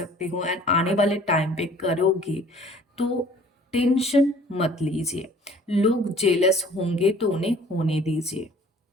हो एंड आने वाले टाइम पे करोगे। तो टेंशन मत लीजिए, लोग जेलस होंगे तो उन्हें होने दीजिए।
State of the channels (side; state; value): both; normal; correlation 0.52